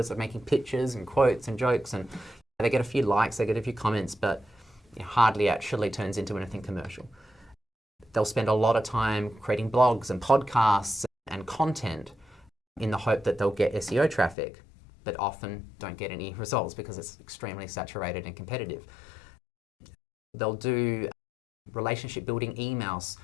of making pictures and quotes and jokes, and they get a few likes, they get a few comments, but it hardly actually turns into anything commercial. They'll spend a lot of time creating blogs and podcasts and content in the hope that they'll get SEO traffic, but often don't get any results because it's extremely saturated and competitive. They'll do relationship building emails.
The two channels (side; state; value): right; drops out; at 14.4 s